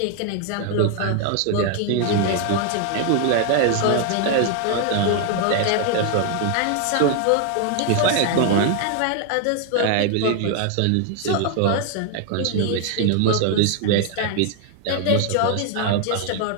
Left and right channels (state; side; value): different; both; correlation 0.00